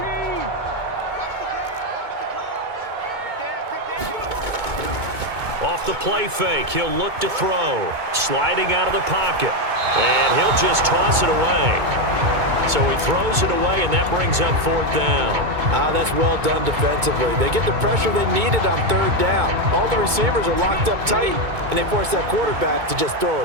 Off the play fake, he'll look to throw. Sliding out of the pocket. And he'll just toss it away. So he throws it away, and that brings up 4th down. That's well done defensively. They get the pressure they needed on 3rd down. All the receivers are locked up tight, and they force that quarterback to just throw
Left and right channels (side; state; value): left; late; 2.2 ms